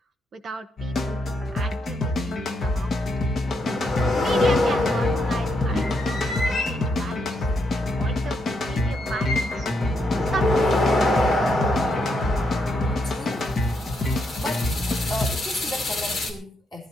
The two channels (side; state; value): both; normal; correlation 0.78